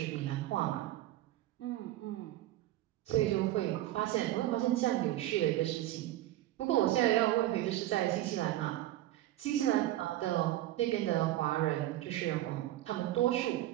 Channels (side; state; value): left; quieter; 14.9 dB